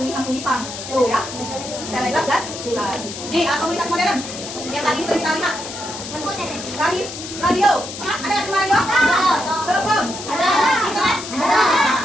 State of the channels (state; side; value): noise; left; hiss, 10 dB below the sound